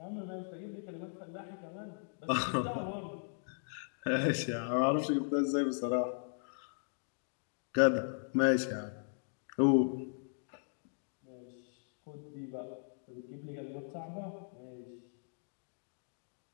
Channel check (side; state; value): right; silent; digital silence